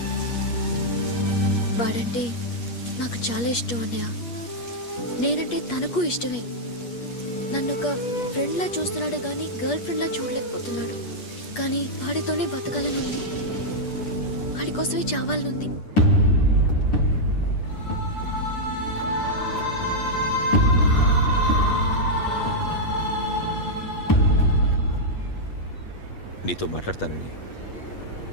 వాడంటే నాకు చాలా ఇష్టం అన్నయ్య. నేనంటే తనకు ఇష్టమే. నన్ను ఒక ఫ్రెండ్లా చూస్తున్నాడు కానీ గర్ల్ ఫ్రెండ్లా చూడలేకపోతున్నాడు. కానీ వాడితోనే బతకాలని ఉంది. వాడి కోసమే చావాలనుంది. నీతో మాట్లాడతానని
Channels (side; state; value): right; late; 8.4 ms